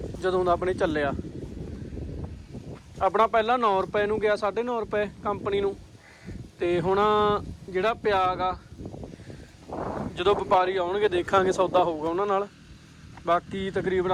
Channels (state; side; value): identical; both; correlation 1.00